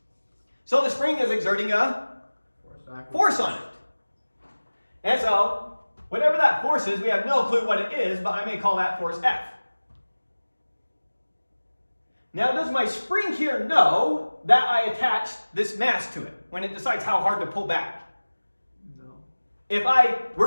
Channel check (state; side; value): inverted; both; correlation -1.00